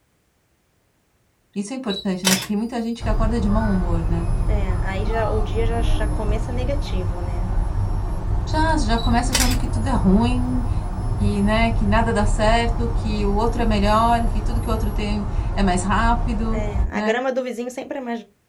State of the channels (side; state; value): both; identical; correlation 1.00